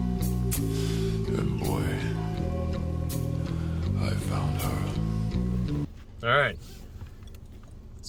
And boy, I found her. All right.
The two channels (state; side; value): identical; both; correlation 1.00